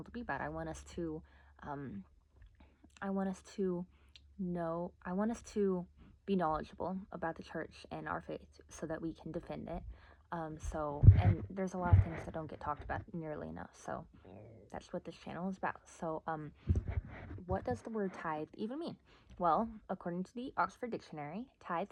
to be about. Um, I want us to I want us to be knowledgeable about the church and our faith so that we can defend it. And there's a lot of things that don't get talked about nearly enough. So that's what this channel is about. What does the word tithe even mean? Well, according to the Oxford Dictionary,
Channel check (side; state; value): both; identical; correlation 1.00